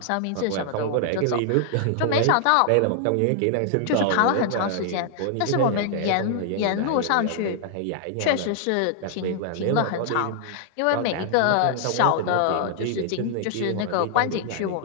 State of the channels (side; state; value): both; different; correlation -0.01